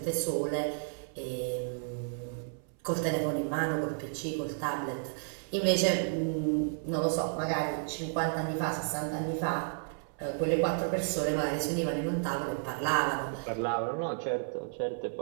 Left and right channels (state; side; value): silent; left; 56 dB below the other